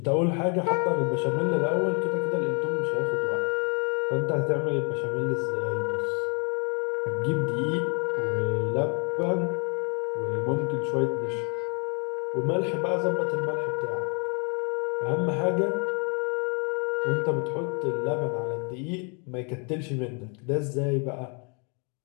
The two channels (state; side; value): quieter; right; 35.4 dB